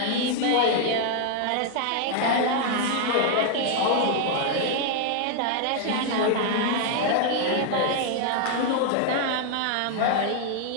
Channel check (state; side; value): different; both; correlation 0.00